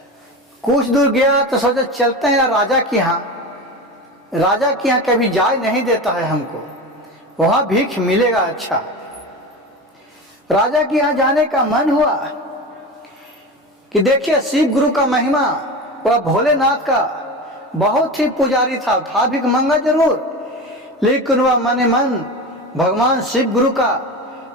कुछ दूर गया तो सोचा चलते हैं राजा के यहाँ। राजा के यहाँ कभी जाय नहीं देता है हमको, वहां भीख मिलेगा। अच्छा, राजा के यहाँ जाने का मन हुआ कि देखिए शिव गुरु का महिमा, वह भोलेनाथ का बहुत ही पुजारी था भीख मंगा जरूर, लेकिन वह मन मन भगवान शिव गुरु का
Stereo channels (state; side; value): normal; both; correlation 0.27